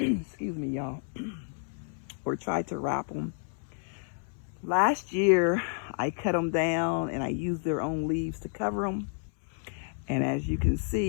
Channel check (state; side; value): silent; right; 58 dB below the other